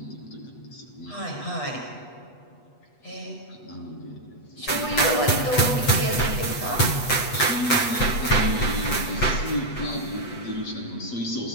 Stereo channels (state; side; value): late; right; 8.2 ms